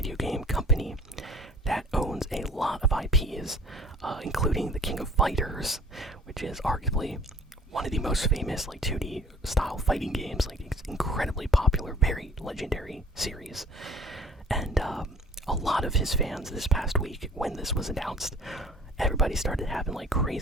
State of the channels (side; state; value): both; normal; correlation 0.50